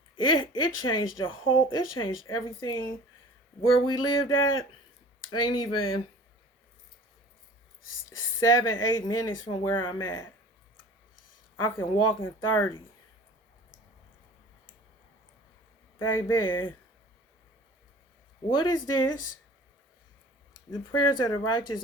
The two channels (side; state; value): both; normal; correlation 0.44